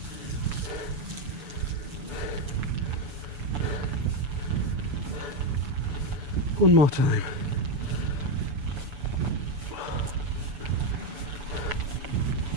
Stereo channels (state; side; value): late; left; 7.0 ms